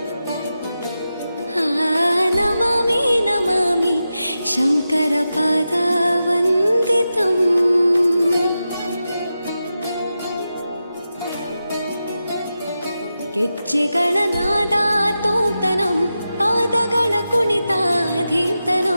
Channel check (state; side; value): inverted; both; correlation -0.91